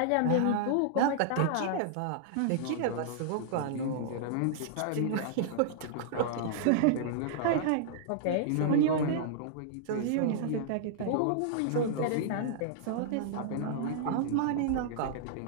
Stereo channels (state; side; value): different; both; correlation -0.01